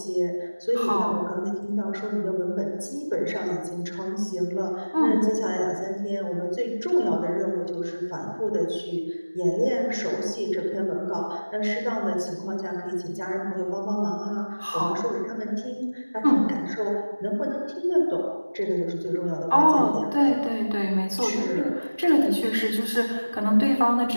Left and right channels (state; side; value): inverted; both; correlation -1.00